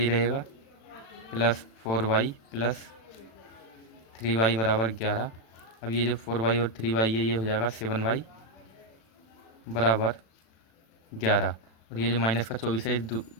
रहेगा प्लस 4y + 3y = 11। अब ये जो 4y और 3y है ये हो जाएगा 7y = 11 और ये जो माइनस का 24 है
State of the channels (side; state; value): right; late; 36 ms